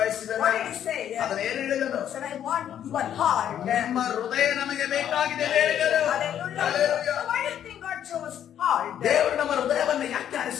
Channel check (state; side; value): quieter; right; 10.1 dB